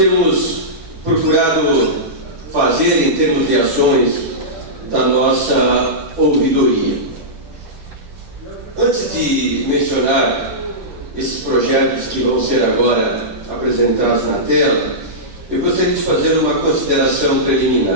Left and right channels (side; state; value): left; late; 10 ms